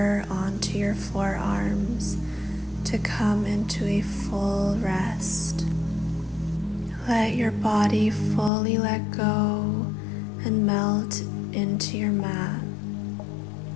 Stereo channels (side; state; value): right; drops out; at 8.5 s